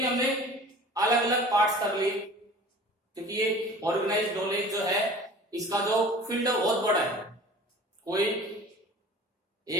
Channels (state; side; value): normal; both; correlation 0.43